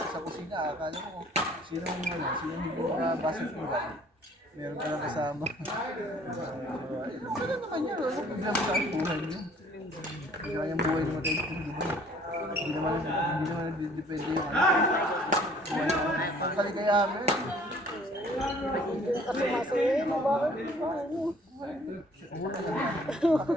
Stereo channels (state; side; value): normal; both; correlation 0.56